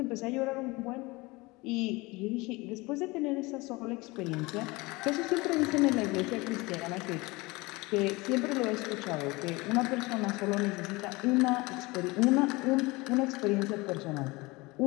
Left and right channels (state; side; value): quieter; right; 23.4 dB